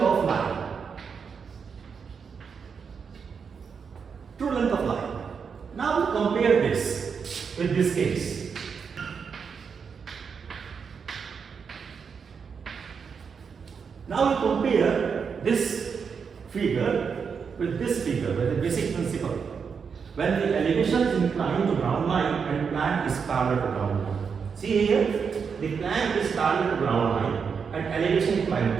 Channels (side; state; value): left; quieter; 6.1 dB